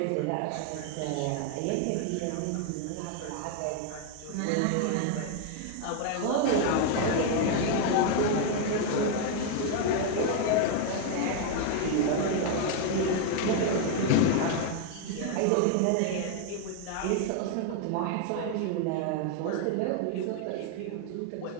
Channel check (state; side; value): different; both; correlation 0.00